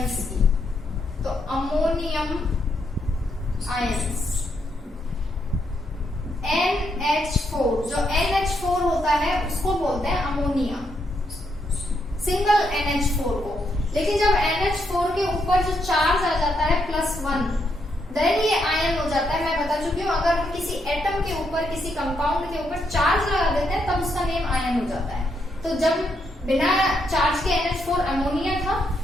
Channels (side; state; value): both; normal; correlation 0.78